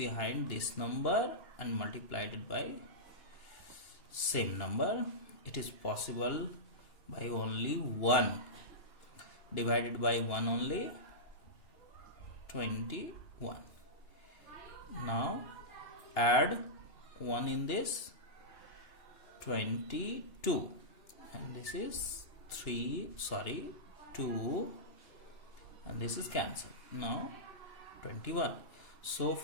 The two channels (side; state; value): right; late; 2.8 ms